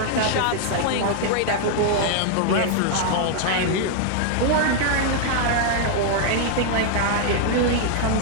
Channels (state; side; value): different; both; correlation 0.00